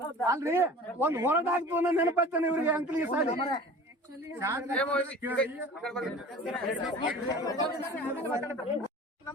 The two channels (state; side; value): normal; both; correlation 0.41